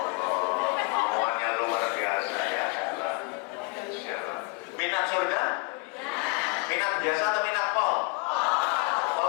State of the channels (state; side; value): quieter; right; 29.3 dB